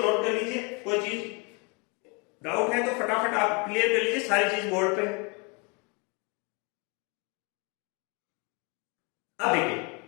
नोट कर लीजिए। कोई चीज डाउट है तो फटाफट आप क्लियर कर लीजिए सारी चीज बोर्ड पे। अब देखिए,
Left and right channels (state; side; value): quieter; right; 32.0 dB